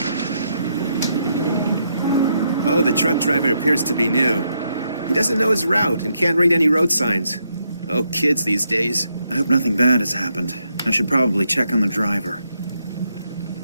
Oh, the truck driver appears to be new. He doesn't know his route and can't read any road signs. Oh, kids these days. I hope nothing bad has happened. I should probably check on the driver.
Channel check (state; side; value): inverted; both; correlation -0.79